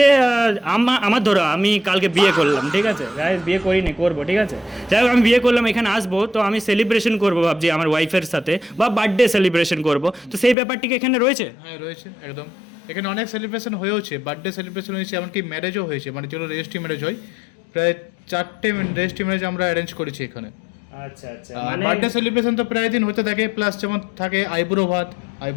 আমার ধরো আমি কালকে বিয়ে করলাম, ঠিক আছে গাইস, বিয়ে করিনি, করবো, ঠিক আছে, যাই হোক আমি বিয়ে করলাম, এখানে আসবো, তো আমি সেলিব্রেশন করবো ভাবছি আমার ওয়াইফের সাথে, বা বার্থডে সেলিব্রেশন করবো, তো সেই ব্যাপারটি কি এখানে রয়েছে? হ্যাঁ রয়েছে, একদম। এখানে অনেক সেলিব্রেশন হয়েওছে, বার্থডে সেলিব্রেশন হয়েছে, এমনকি ম্যারেজও হয়েছে, মানে যেগুলো রেজিস্ট্রি ম্যারেজ হয়, প্রায় 4টে রেজিস্ট্রি ম্যারেজ আমরা অ্যারেঞ্জ করেছি এখানে। আচ্ছা আচ্ছা, আর বার্থডে সেলিব্রেশন তো প্রায় দিন হতে থাকে, প্লাস যেমন থাকে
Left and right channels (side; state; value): right; drops out; at 10.6 s